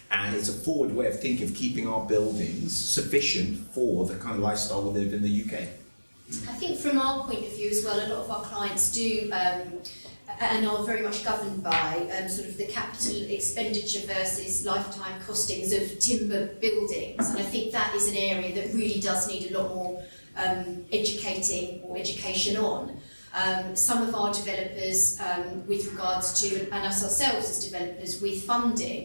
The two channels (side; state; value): both; inverted; correlation -1.00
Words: And it's a forward way of thinking of keeping our buildings sufficient for the kind of lifestyle we live in the UK. I think from our point of view as well, a lot of our clients do and are very much governed by sort of the capital expenditure versus lifetime costings of timber buildings, and I think that is an area that really does need a lot more education on. Some of our developers, with regards to, and us ourselves as developers with